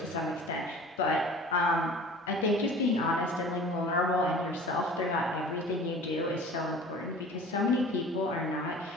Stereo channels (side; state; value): both; normal; correlation 0.43